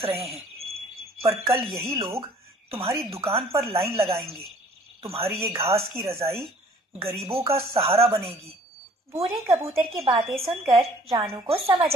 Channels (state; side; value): normal; both; correlation 0.55